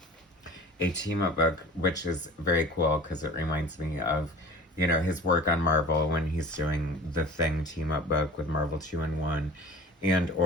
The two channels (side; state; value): both; normal; correlation 0.41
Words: team up book, which is very cool because it reminds me of, his work on Marvel when he's doing the Thing team up book with Marvel 2-in-1 and